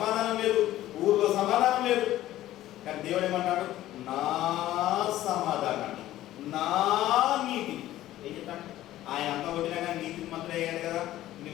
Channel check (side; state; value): right; quieter; 14.4 dB